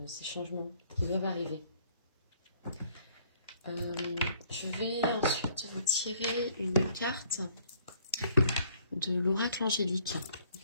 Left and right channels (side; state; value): both; inverted; correlation -0.61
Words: ces changements qui doivent arriver. Je vais ensuite vous tirer une carte de l'oracle angélique,